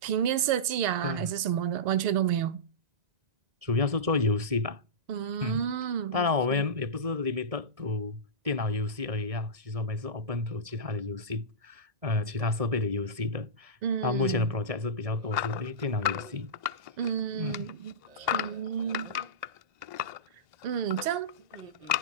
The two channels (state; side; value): late; left; 1.9 ms